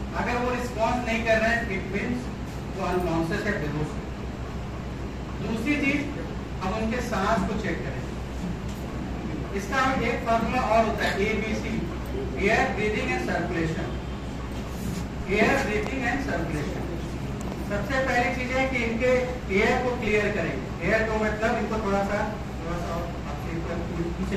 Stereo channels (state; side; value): identical; both; correlation 1.00